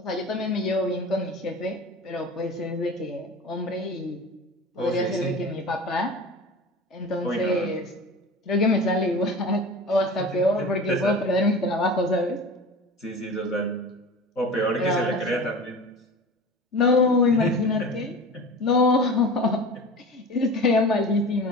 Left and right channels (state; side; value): normal; both; correlation 0.35